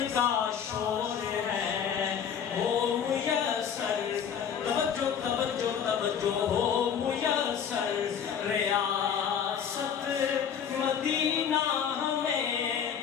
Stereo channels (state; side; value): quieter; right; 7.9 dB